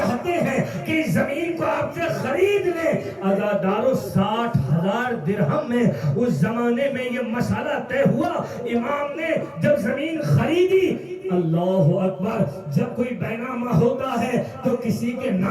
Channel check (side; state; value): both; identical; correlation 1.00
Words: ہیں کہ اس زمین کو آپ سے خرید لیں۔ عزادارو 60,000 درہم میں اس زمانے میں یہ مسئلہ طے ہوا۔ امام نے جب زمین خریدی، اللہ اکبر، جب کوئی بینامہ ہوتا ہے تو کسی کے